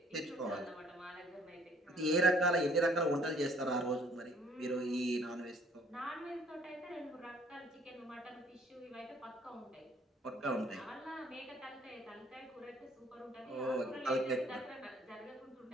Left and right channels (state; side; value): normal; both; correlation 0.59